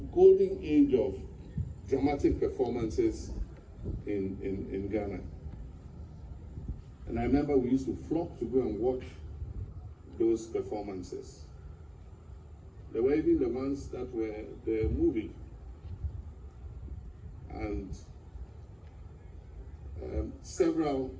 golden age of dramatic performances in Ghana. And I remember we used to flock to go and watch those performances. There were even the ones that were the movie. And several,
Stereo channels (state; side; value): identical; both; correlation 1.00